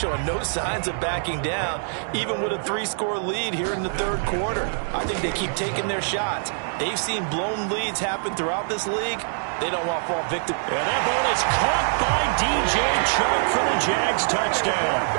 no signs of backing down, even with a 3-score lead here in the third quarter. I think they keep taking their shots. They've seen blown leads happen throughout this league. They don't want to fall victim. And that ball is caught by DJ Chark for the Jags touchdown.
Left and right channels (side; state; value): left; silent; 62 dB below the other